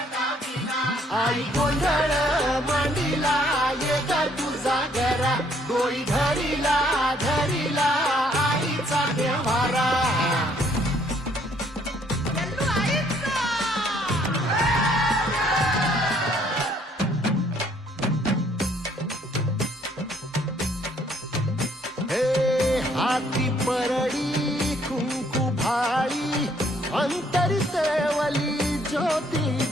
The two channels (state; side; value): normal; both; correlation 0.65